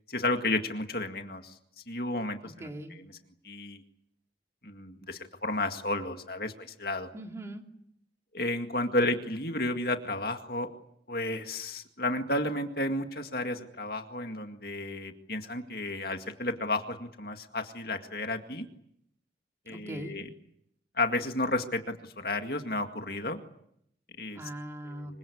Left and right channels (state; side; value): normal; both; correlation 0.11